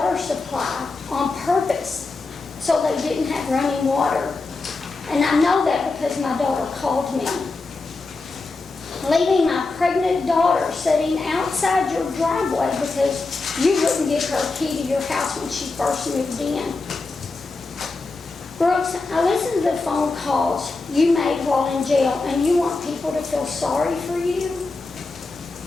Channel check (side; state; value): right; quieter; 3.7 dB